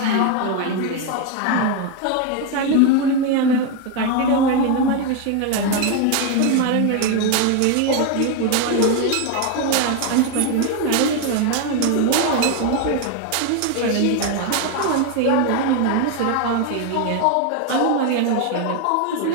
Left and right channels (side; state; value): both; different; correlation 0.01